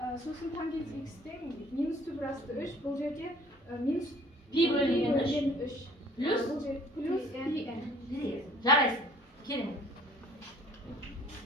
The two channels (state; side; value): normal; both; correlation 0.54